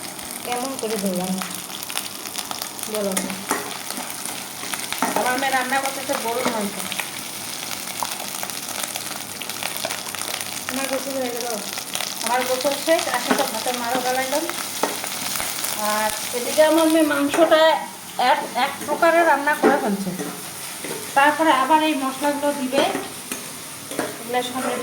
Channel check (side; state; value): both; identical; correlation 1.00